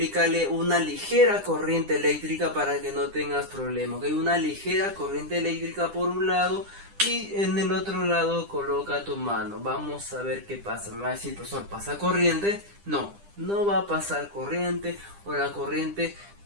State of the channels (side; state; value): left; late; 10 ms